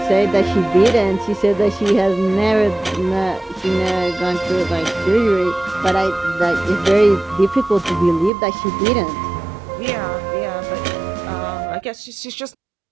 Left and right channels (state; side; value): drops out; left; at 8.3 s